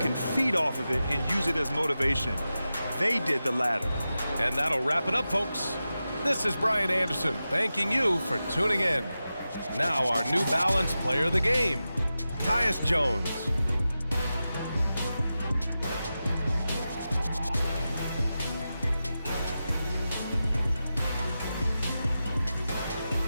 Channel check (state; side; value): inverted; both; correlation -0.92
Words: feed off of it and use it as motivation. They did the latter. And that'll wrap it up, folks. This is Brian Anderson thanking you for tuning in. Now our New Balance player of the game, Tyus Jones.